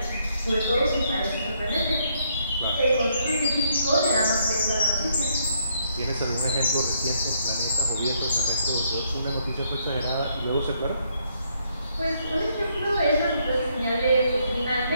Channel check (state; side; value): inverted; both; correlation -0.72